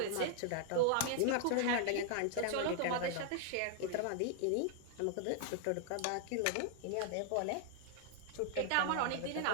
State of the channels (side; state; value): both; different; correlation 0.00